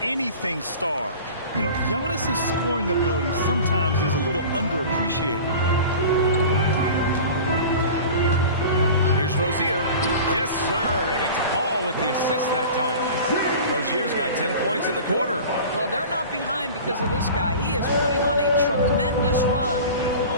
star. You know, Giannis' scoring ability sometimes is a little underappreciated. Here's Rozier. Yes, sir. And it's Ball with the assist that time. Rozier's got 10 points in the quarter. Well, they're not behind because of this guy. He is putting on a tremendous run.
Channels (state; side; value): inverted; both; correlation -0.38